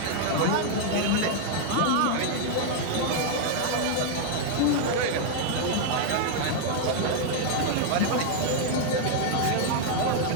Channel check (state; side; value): different; both; correlation 0.00